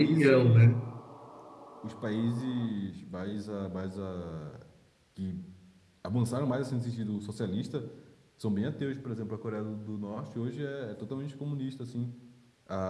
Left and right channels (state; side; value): identical; both; correlation 1.00